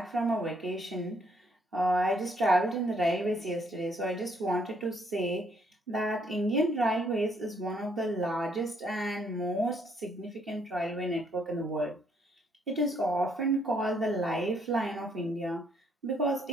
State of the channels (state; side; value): normal; both; correlation 0.69